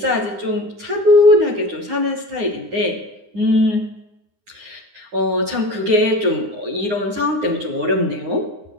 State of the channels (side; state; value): left; late; 9.7 ms